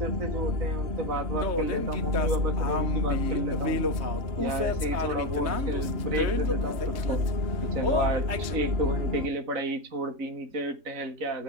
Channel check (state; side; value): late; left; 3.2 ms